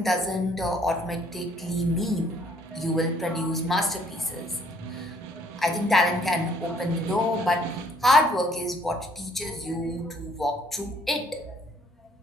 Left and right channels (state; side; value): normal; both; correlation 0.62